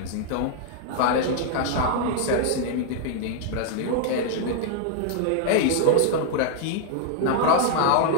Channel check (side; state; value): both; different; correlation -0.01